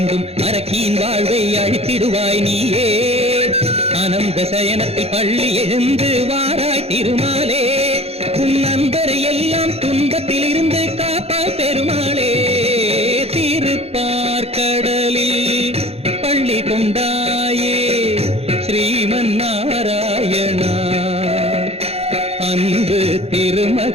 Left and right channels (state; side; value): late; left; 0.29 ms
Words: அரக்கியின் வாழ்வை அழித்திடுவாய் நீயே. ஆனந்த சயனத்தில் பள்ளி எழுந்து வாராய் திருமாலே, உன் நண்பரை எல்லாம் துன்பத்தில் இருந்து காப்பாய் பெருமாளே. திருப்பார்கடலில் பள்ளி கொண்டாயே ஸ்ரீமன் நாராயணா, அன்பு